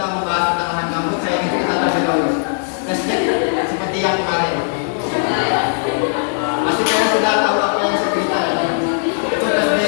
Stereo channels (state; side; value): silent; right; digital silence